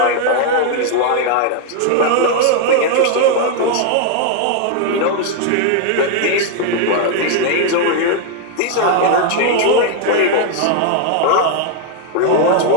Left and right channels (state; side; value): different; both; correlation 0.00